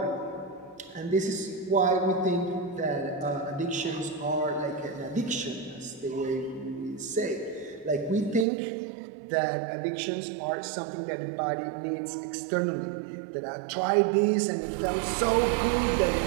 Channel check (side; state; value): left; drops out; at 8.5 s